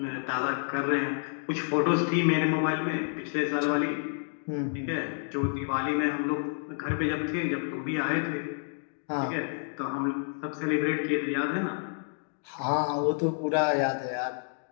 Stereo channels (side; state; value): right; silent; 58 dB below the other